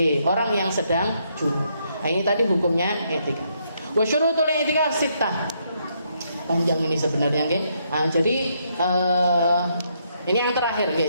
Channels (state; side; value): inverted; both; correlation -0.75